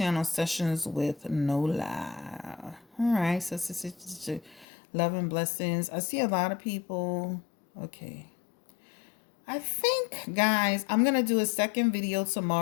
Sessions with Nola. All right. So, love and blessings. I see a lot of people. Okay. I think, guys, I'm going to do a second video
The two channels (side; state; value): right; drops out; at 4.7 s